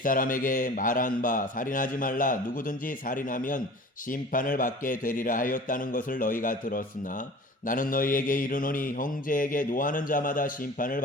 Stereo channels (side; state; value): both; normal; correlation 0.42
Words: 말한 바 살인하지 말라. 누구든지 살인하면 심판을 받게 되리라 하였다는 것을 너희가 들었으나 나는 너희에게 이르노니 형제에게 노하는 자마다 심판을